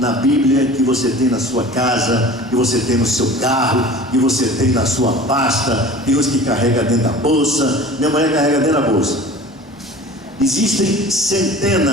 Bíblia, que você tem na sua casa, que você tem no seu carro, que você tem na sua pasta. Tem uns que carrega dentro da bolsa. Minha mulher carrega dentro da bolsa. Existem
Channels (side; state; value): both; normal; correlation 0.41